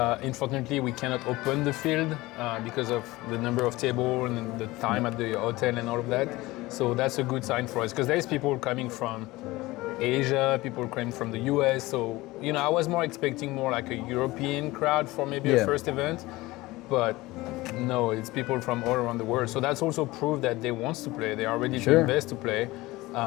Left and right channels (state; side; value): quieter; right; 19.9 dB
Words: Unfortunately, we cannot open the field because of the number of tables and the time at the hotel and all of that. So that's a good sign for us, because there's people coming from Asia, people coming from the US. So, I was more expecting more like a European crowd for maybe a first event, but no, it's people from all around the world. So that's also proof that they want to play. They are ready to invest to play.